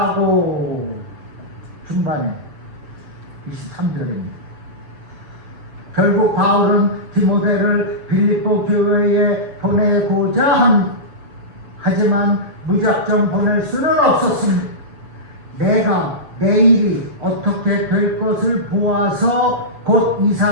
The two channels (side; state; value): left; late; 7.0 ms